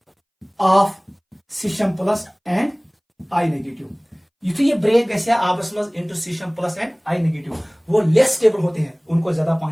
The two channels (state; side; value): identical; both; correlation 1.00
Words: of caesium plus and I negative. ये ब्रेक गैस आपस में into caesium plus and I negative, वो लेस स्टेबल होते हैं, उनको ज्यादा